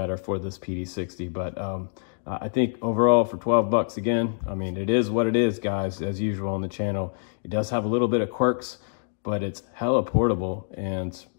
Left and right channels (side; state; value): right; silent; digital silence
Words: for this PD60. But I think overall for 12 bucks, again, I mean, it is what it is, guys, as usual on the channel. It does have a little bit of quirks, but it's hella portable and